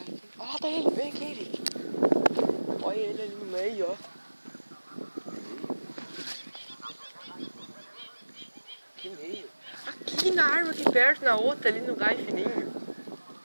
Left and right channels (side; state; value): both; inverted; correlation -1.00